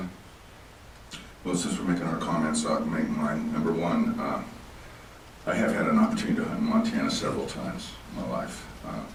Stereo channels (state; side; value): identical; both; correlation 1.00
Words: Well, since we're making our comments, I'll make mine. Number one, I have had an opportunity to hunt in Montana several times in my life,